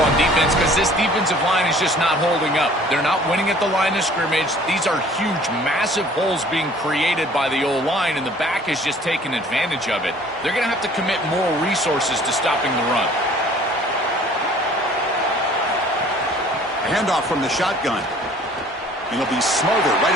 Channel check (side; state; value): both; normal; correlation 0.53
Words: defense because this defensive line is just not holding up. They're not winning at the line of scrimmage. These are huge, massive holes being created by the O-line, and the back is just taking advantage of it. They're going to have to commit more resources to stopping the run. A handoff from the shotgun. And he'll be smothered right